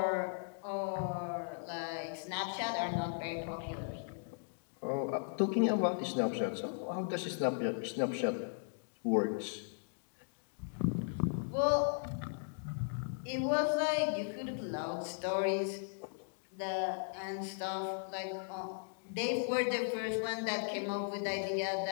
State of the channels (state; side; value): silent; right; digital silence